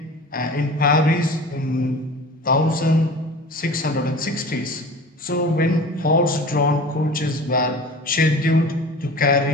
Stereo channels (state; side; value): normal; both; correlation 0.39